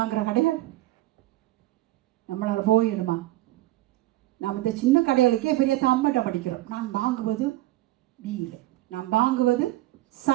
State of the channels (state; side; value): quieter; left; 16.6 dB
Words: கடைகள் நம்மளால் போயிடுமா? நாம் இந்த சின்ன கடைகளுக்கே பெரிய தம்மட்டம் படிக்கிறோம். நான் வாங்குவது பீயில், நான் வாங்குவது